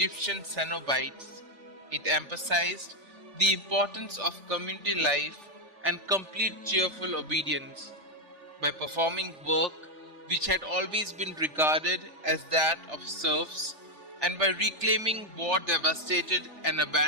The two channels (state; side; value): late; left; 3.4 ms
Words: Cenobites, it emphasized the importance of community life and complete cheerful obedience by performing work which had always been regarded as that of serfs, and by reclaiming war-devastated and